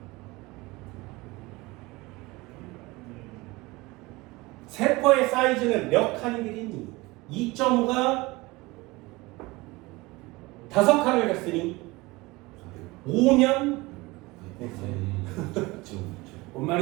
세포의 사이즈는 몇 칸이 되겠니? 2.5가 5칸을 갔으니 5면 뭔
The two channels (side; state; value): left; quieter; 22.3 dB